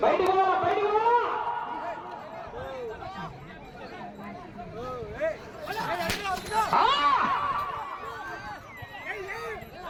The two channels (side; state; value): both; identical; correlation 1.00